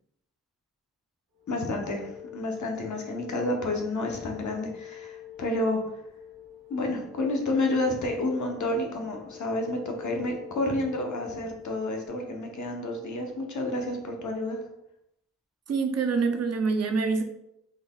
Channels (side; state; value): both; normal; correlation 0.44